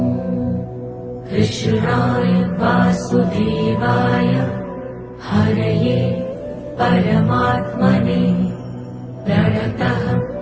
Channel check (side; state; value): both; identical; correlation 1.00